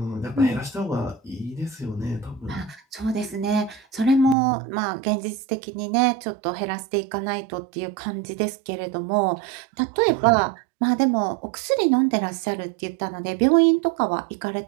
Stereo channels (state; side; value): drops out; left; at 4.4 s